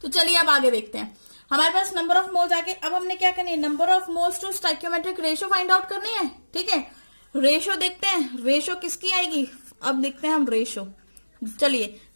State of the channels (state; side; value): inverted; both; correlation -1.00